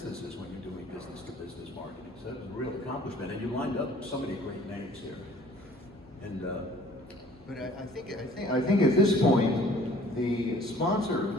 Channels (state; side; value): normal; both; correlation 0.53